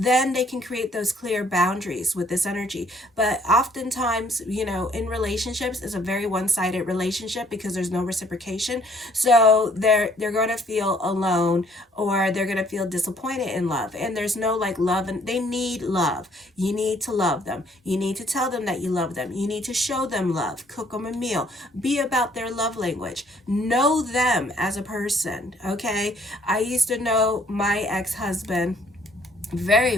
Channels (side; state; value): both; normal; correlation 0.62